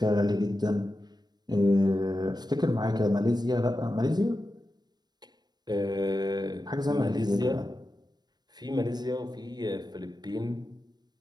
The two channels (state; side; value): late; left; 0.20 ms